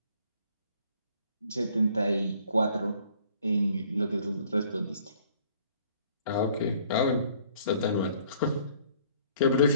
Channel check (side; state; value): both; inverted; correlation -0.59